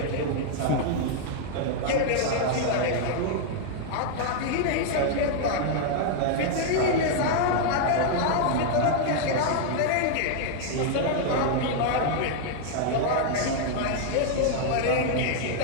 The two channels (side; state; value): both; different; correlation 0.00